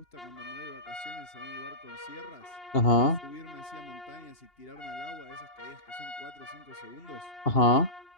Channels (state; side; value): late; right; 2.8 ms